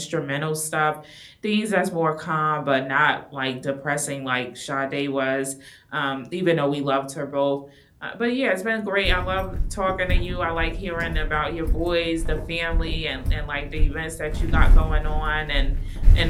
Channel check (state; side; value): identical; both; correlation 1.00